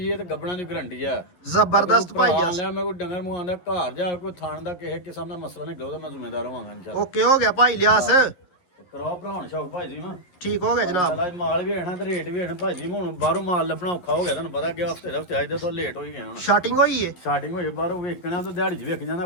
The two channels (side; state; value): right; late; 11 ms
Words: ਹੈ ਤੇ ਗੱਬਣਾ ਦੀ ਗਾਰੰਟੀ ਹੈ ਜ਼ਬਰਦਸਤ ਭਾਈ ਭਰਾ ਲਿਆ ਮੈਂ ਕੋਈ ਡੰਗਰ ਮੰਗਾਉਂਦਾ ਘਰ ਜਾ ਕੋਈ ਥਾਣ ਦਾ ਕਿਸੇ ਕਿਸਮ ਦਾ ਮਸਲਾ ਨਹੀਂ ਉਹਦਾ ਮੈਂ ਜ਼ਿੰਮੇਦਾਰ ਹੋਵਾਂਗਾ ਇਨਸ਼ਾਅੱਲਾ ਓਕੇ ਹੋ ਗਿਆ ਭਾਈ ਲਿਆਸ ਕਰਾਓ ਭਰਾਉਣ ਸ਼ੌਕ ਭਾਈ ਜੀ ਮੈਂ ਠੀਕ ਹੋ ਗਿਆ ਜਨਾਬ ਚਲਾ ਮਾਲ ਵੀ ਆਣਾ ਤੇ ਰੇਟ ਵੀ ਆਣਾ ਭਾਈ ਜੀ ਹੁਣ ਬਾਹਰੋਂ ਮਾਲ ਲੱਭਣਾ ਔਖਾ ਹੋ ਗਿਆ ਤੁਹਾਨੂੰ ਪਤਾ ਕਿ ਹਫਤੇ ਦਾ ਹਫਤੇ ਆਏ ਤਾਂ ਲੇਟ ਹੋ ਹੀ ਗਿਆ ਹੁਣ ਸ਼ਾਰਟਿੰਗ ਹੋਈ ਹੈ ਸਟਾਰਟਿੰਗ ਹੋਈ ਬਾਹਰੋਂ ਵੇਖਣਾ ਤਾਂ ਦਿਹਾੜੀ 'ਚ ਵੇਖ ਜਾਂਦਾ